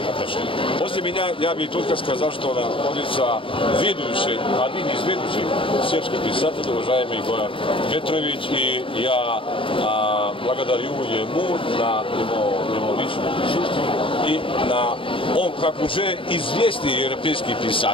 отношений. После меня я бы только сказал, что находится один из ведущих сербских писателей, уважаемый Goran Petrović, и я благодарю ему на его личное присутствие и он, как уже известный европейский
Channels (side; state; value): right; late; 0.25 ms